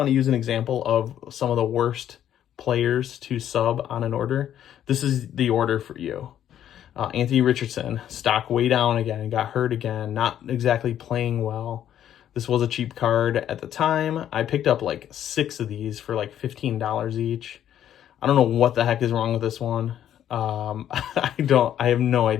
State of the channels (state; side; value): quieter; right; 10.6 dB